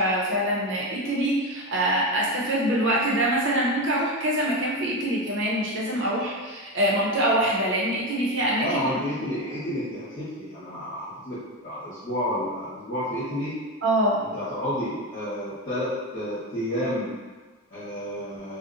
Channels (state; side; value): normal; both; correlation 0.16